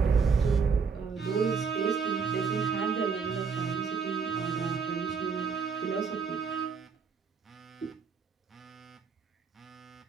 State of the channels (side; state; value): left; quieter; 5.5 dB